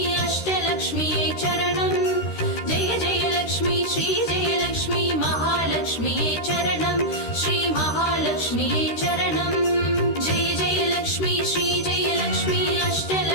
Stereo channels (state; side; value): late; right; 13 ms